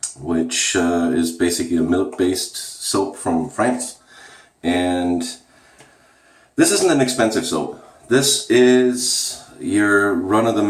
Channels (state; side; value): identical; both; correlation 1.00